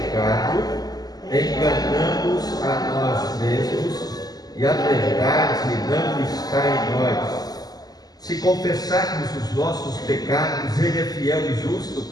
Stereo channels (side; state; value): right; late; 0.19 ms